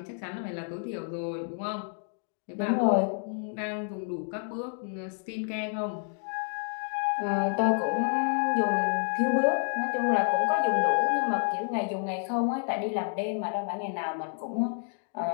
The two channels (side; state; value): right; silent; 56 dB below the other